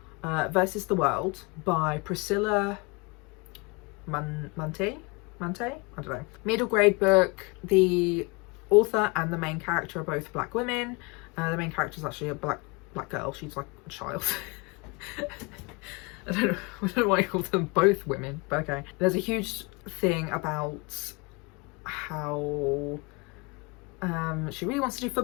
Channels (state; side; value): quieter; right; 28.4 dB